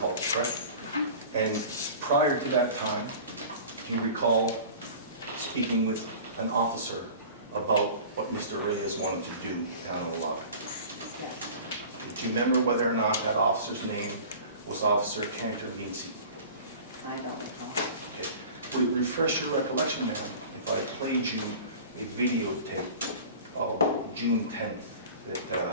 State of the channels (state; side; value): inverted; both; correlation -0.40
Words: correct? And prior to that time, do you recall speaking with an officer about what Mr. Reyes wanted to do down in the lobby? Yes. Do you remember whether or not that officer's name was Officer Cantor-Meadsey? I don't recall. Okay. Refresh your recollection, ma'am, if I played you a videotape of June 10th